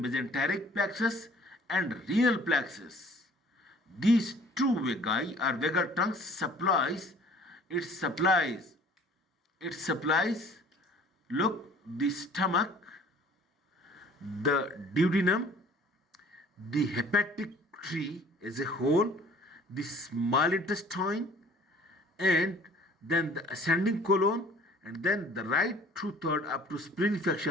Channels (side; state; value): both; normal; correlation 0.52